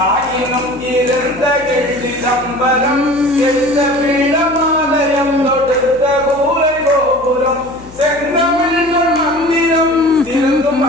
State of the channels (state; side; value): noise; left; hum, 21 dB below the sound